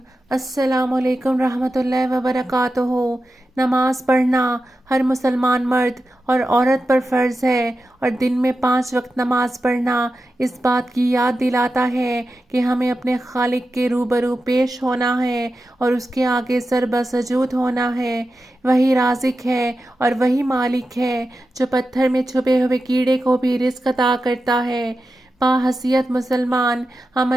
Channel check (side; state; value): both; normal; correlation 0.91